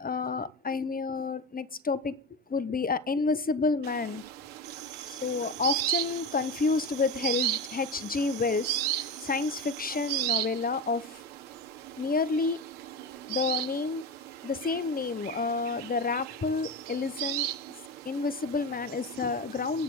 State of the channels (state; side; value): normal; both; correlation 0.23